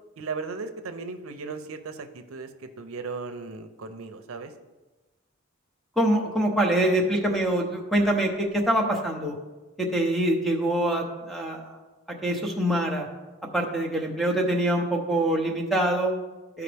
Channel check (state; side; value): normal; both; correlation 0.56